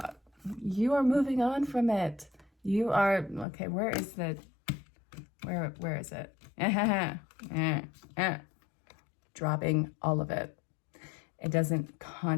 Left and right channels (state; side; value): drops out; right; at 3.5 s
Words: You are moving on from it. You are, okay, where is it? Dropping all of it. It doesn't